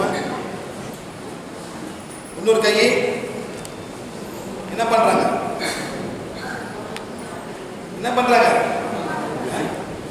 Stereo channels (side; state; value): both; identical; correlation 1.00